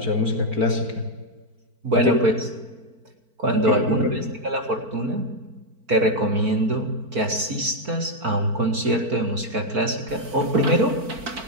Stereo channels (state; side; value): late; left; 4.5 ms